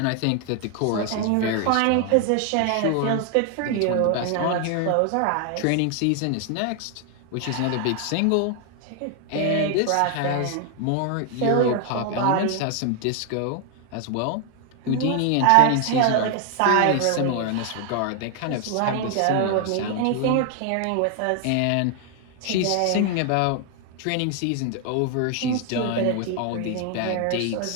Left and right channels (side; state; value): both; different; correlation 0.00